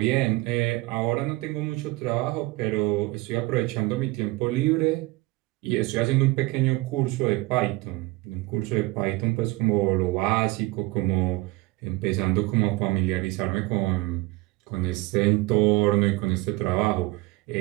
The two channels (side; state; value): left; quieter; 21.1 dB